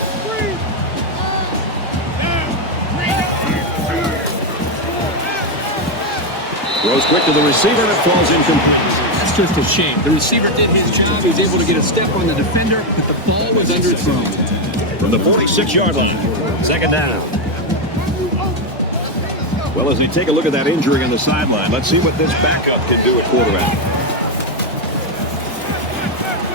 Throws quick to the receiver, and it falls incomplete. That's just a shame. The receiver did his job. He was able to get a step on the defender, but the ball was underthrown. From the 46-yard line, 2nd down. Well, as we take a look at that injury on the sideline, let's see what this backup can do at quarterback.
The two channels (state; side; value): normal; both; correlation 0.06